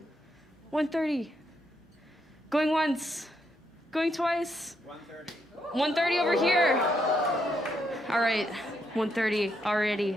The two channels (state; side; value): normal; both; correlation 0.78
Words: 130. Going once. Going twice. 130. 130 over here. All right, 130 already.